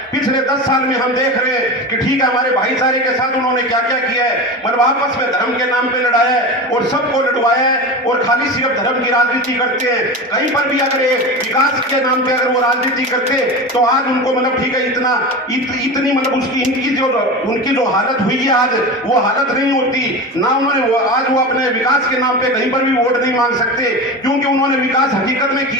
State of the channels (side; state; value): both; normal; correlation 0.27